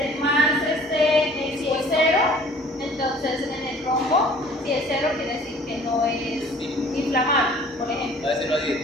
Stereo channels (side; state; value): both; normal; correlation 0.52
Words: más si es 0, entonces en el rombo, si es 0 quiere decir que no es inflamable, por ejemplo. A veces no